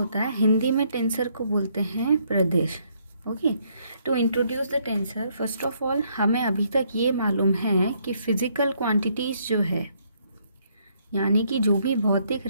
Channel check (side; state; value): both; inverted; correlation -0.70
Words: है? हिंदी में टेंसर को बोलते हैं प्रदेश. Okay, to introduce the tensor, first of all हमें अभी तक ये मालूम है कि फिजिकल क्वांटिटीज़ जो है, यानी कि जो भी भौतिक